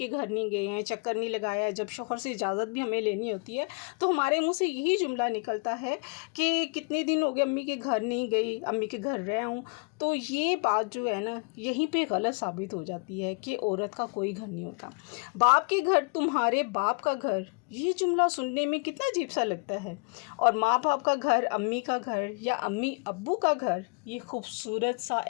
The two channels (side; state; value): right; quieter; 34.3 dB